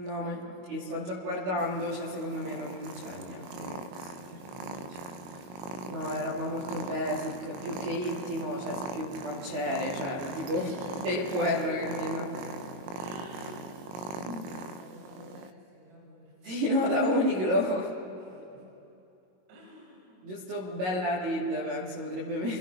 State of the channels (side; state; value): left; late; 22 ms